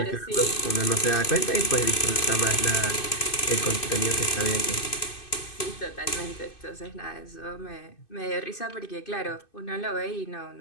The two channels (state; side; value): late; right; 2.6 ms